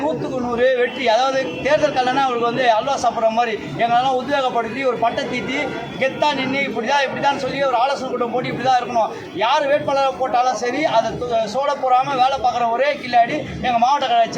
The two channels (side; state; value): both; identical; correlation 1.00